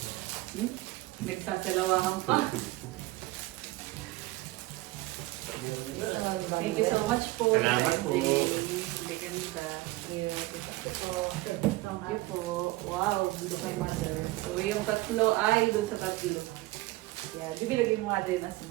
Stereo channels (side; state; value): left; quieter; 19.6 dB